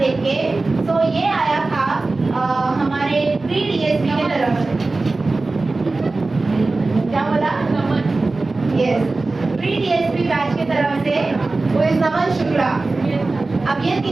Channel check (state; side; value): quieter; left; 3.4 dB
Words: के। सो ये आया था हमारे प्री डीएसपी की तरफ से। क्या बोला? यस, प्री डीएसपी बैच की तरफ से वो इस नमन शुक्ला। अब ये